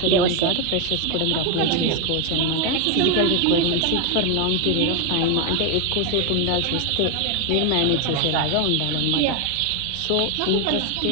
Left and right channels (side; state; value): both; different; correlation 0.01